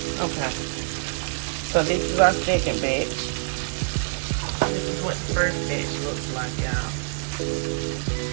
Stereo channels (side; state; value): left; silent; 61 dB below the other